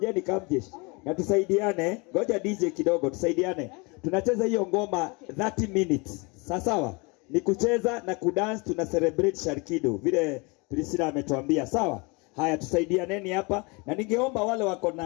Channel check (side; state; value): right; quieter; 28.5 dB